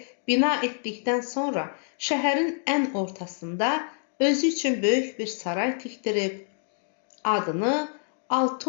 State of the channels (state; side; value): silent; right; digital silence